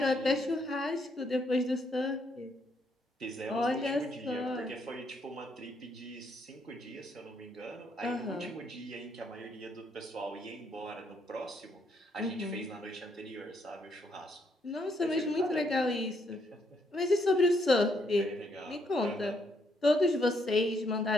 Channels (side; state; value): both; normal; correlation 0.74